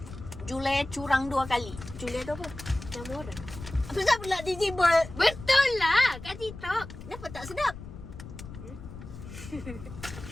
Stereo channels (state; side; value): noise; left; rumble, 13 dB below the sound